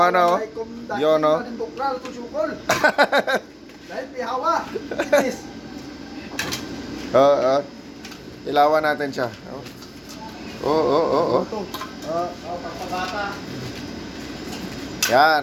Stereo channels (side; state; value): both; identical; correlation 1.00